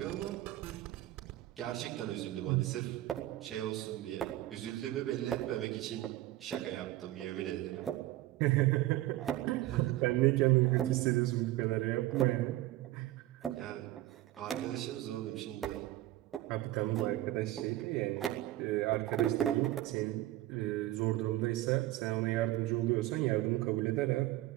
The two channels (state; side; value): quieter; left; 15.7 dB